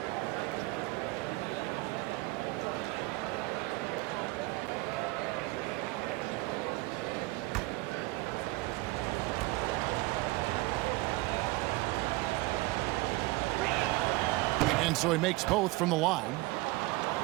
And And so he makes both from the line.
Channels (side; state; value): left; quieter; 21.7 dB